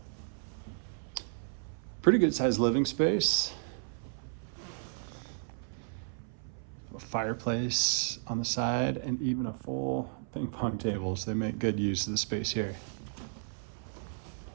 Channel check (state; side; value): silent; left; 55 dB below the other